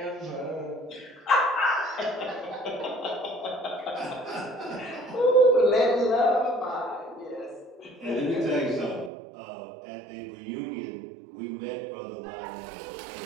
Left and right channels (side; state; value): left; drops out; at 9.1 s